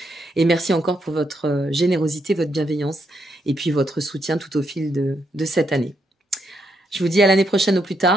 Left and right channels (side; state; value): both; normal; correlation 0.79